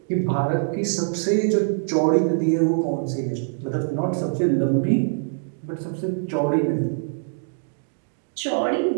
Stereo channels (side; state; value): left; silent; digital silence